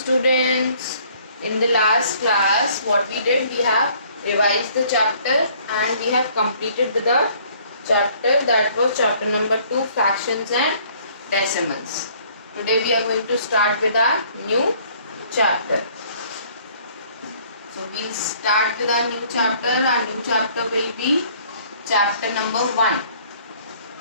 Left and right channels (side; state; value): both; inverted; correlation -0.58